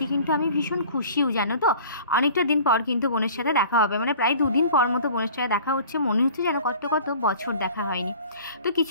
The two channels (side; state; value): both; inverted; correlation -0.46